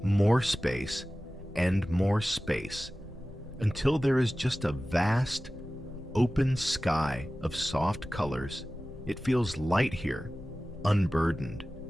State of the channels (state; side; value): normal; both; correlation 0.96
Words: More space and more space, until there is just a vast, open sky of soft colors. It feels light here, unburdened.